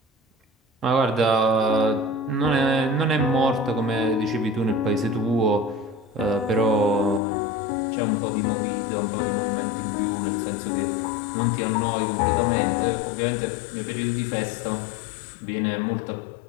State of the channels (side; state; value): right; drops out; at 7.2 s